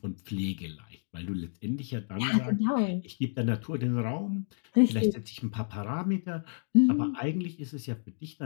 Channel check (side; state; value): right; silent; 57 dB below the other